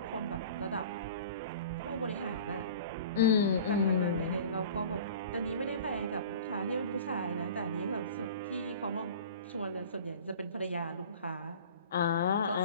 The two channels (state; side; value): inverted; both; correlation -0.41